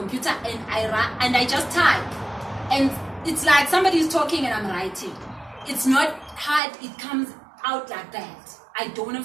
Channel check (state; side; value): drops out; left; at 6.6 s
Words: and I just type, and it's like somebody is talking and I'm writing. It's not hard, it comes out like that. I don't